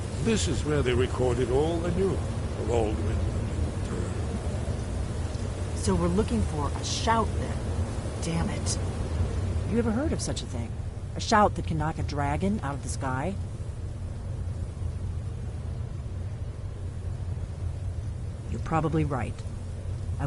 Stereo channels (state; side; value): identical; both; correlation 1.00